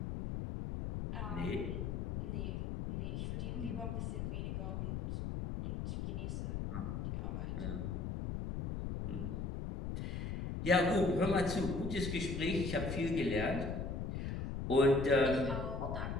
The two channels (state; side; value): noise; left; rumble, 3 dB below the sound